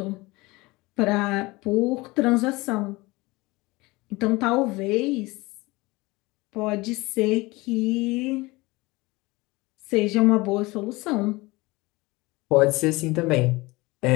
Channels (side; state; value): right; quieter; 22.3 dB